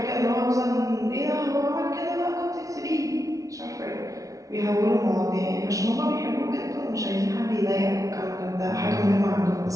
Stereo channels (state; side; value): late; left; 0.17 ms